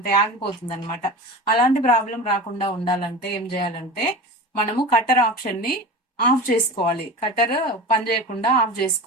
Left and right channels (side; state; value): both; normal; correlation 0.31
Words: ఆగిపోతుంది అనమాట. అలాంటి ప్రాబ్లం రాకుండా ఉండాలంటే ఏం చేయాలంటే మనము కట్టర్ ఆప్షన్ ని ఆఫ్ చేసుకోవాలి. కట్టర్ పని చేయకుండా ఆఫ్